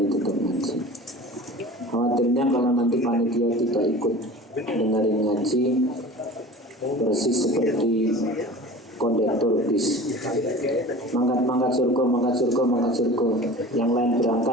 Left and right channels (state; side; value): normal; both; correlation 0.39